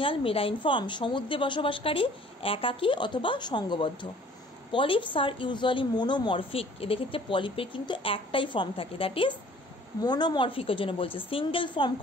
মেরাইন ফর্ম, সমুদ্রে বসবাসকারী, একাকী অথবা সংঘবদ্ধ। পলিপস আর ইউজুয়ালি মোনোমরফিক, এদের ক্ষেত্রে পলিপের কিন্তু একটাই ফর্ম থাকে, দ্যাট ইজ মোনোমরফিকের জন্য বলছে, single form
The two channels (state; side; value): normal; both; correlation 0.53